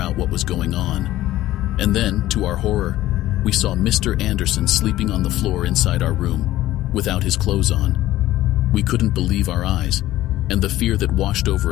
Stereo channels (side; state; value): right; quieter; 15.1 dB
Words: what was going on. And then, to our horror, we saw Mr. Anderson sleeping on the floor inside our room, without his clothes on. We couldn't believe our eyes, and the fear that washed